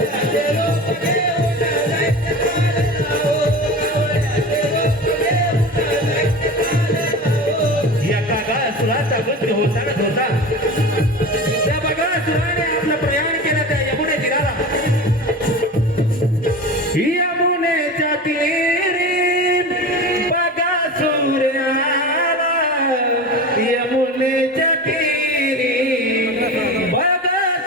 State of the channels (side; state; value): both; normal; correlation 0.31